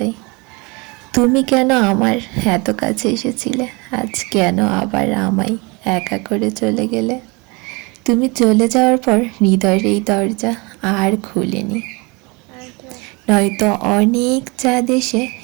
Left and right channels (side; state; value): left; quieter; 27.9 dB